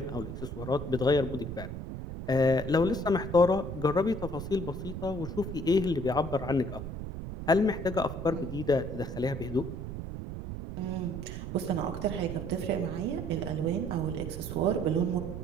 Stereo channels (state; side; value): noise; right; rumble, 7 dB below the sound